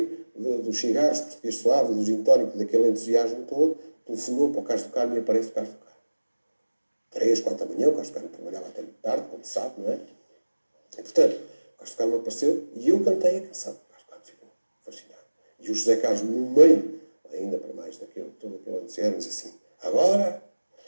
dos cigarros português suave, do gin tónico, daquele entusiasmo todo, telefonou para o Carlos do Carmo e aparece o Carlos do Carmo. 3, 4 da manhã, o Carlos do Carmo trabalhava até muito tarde, como se sabe, não é? E, portanto, o Carlos do Carmo apareceu e eu cantei a canção. O Carlos do Carmo ficou fascinado. E o José Carlos, no meio, ainda para mais daquele, todo aquele entusiasmo, diz assim: agora,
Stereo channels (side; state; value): both; inverted; correlation -1.00